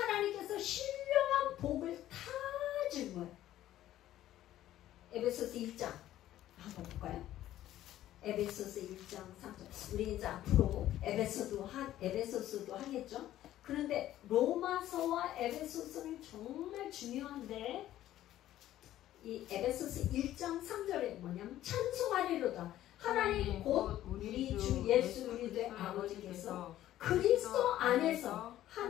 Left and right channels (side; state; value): right; quieter; 13.3 dB